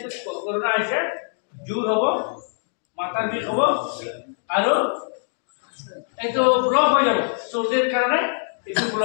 কৰোণা আহিছে জোৰ হ'ব মাথাৰ বিষ হ'ব আৰু এইটো ব্লক হৈ যাব চৰ্দিৰ কাৰণে এইটো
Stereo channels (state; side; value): silent; right; digital silence